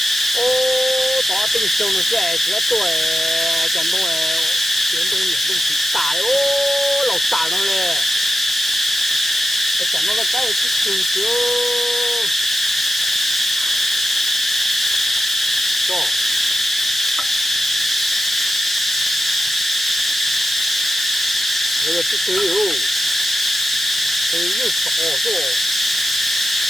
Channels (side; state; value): both; normal; correlation 0.90